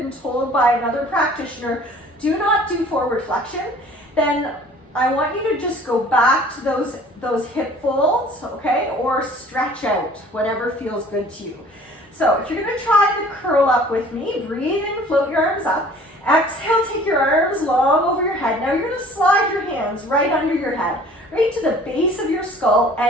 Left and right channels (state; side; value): normal; both; correlation 0.50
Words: told by another practitioner, do not do forward flexion, then I want you to just go back to those hip folds, okay? Or stretch out, whatever feels good to you. So if you're gonna try the curl up with me, breathe in, float your arms up. Exhale, take your arms long over your head. Now you're gonna slide your hands right under your head, right to the base of your skull,